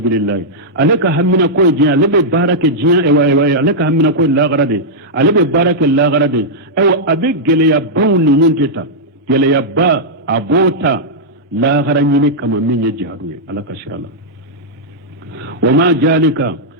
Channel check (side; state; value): both; normal; correlation -0.08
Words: alaka hammina ko jiya lebe baraka jiya ewa alaka hammina ko la garadi alebe baraka la garadi ewa abe gele ya bawni nunteta gele ya ba abota la garanyini kama minye jihadu alaka shirala wama jalika